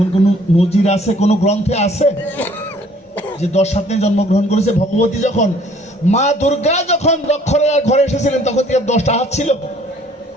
কোনো নজির আছে, কোনো গ্রন্থে আছে যে 10 হাত নিয়ে জন্মগ্রহণ করেছে? ভগবতী যখন, মা দুর্গা যখন দক্ষরার ঘরে এসেছিলেন তখন কি 10টা হাত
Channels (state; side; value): normal; both; correlation 0.58